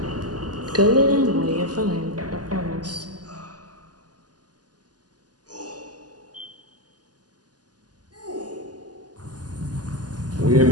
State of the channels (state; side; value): late; left; 0.69 ms